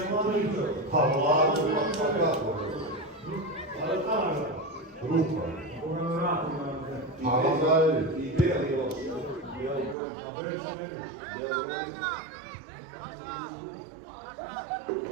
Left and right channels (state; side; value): drops out; left; at 10.0 s